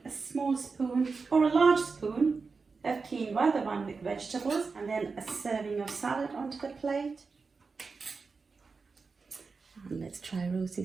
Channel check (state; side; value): quieter; left; 4.6 dB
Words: a small spoon or a large spoon of quinoa, the one with vegetables, and then a serving of salad onto the plate. And let's try